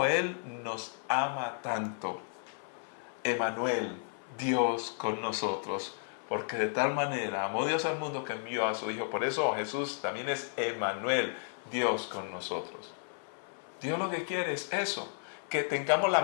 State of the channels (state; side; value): silent; right; 56 dB below the other